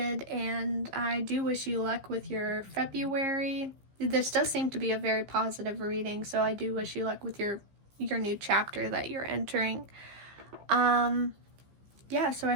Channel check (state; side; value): late; left; 15 ms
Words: and I do wish you luck with your February. This does seem to be a very positive reading, so I do wish you luck with your new chapter that you're entering. Yeah, so